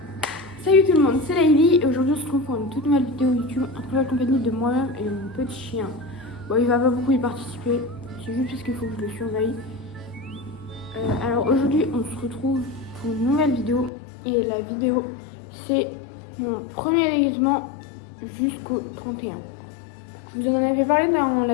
Salut tout le monde, c'est Laïli et aujourd'hui on se retrouve pour une toute nouvelle vidéo YouTube en très compagnie de moi-même et de mon petit chien. Bon, il va pas beaucoup y participer, c'est juste parce qu'il faut que je le surveille. Alors aujourd'hui on se retrouve pour une nouvelle vidéo et la vidéo c'est mon premier déguisement jusqu'au 31. Je vous en avais parlé dans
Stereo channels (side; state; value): right; drops out; at 13.9 s